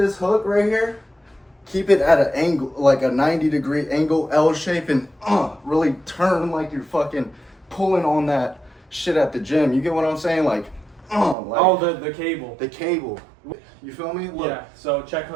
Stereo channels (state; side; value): drops out; left; at 11.4 s